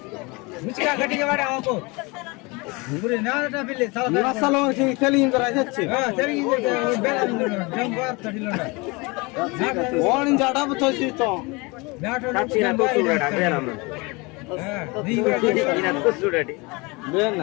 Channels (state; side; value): quieter; right; 26.5 dB